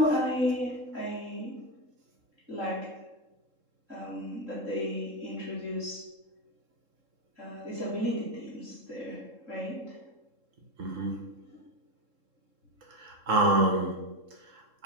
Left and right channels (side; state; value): left; late; 3.7 ms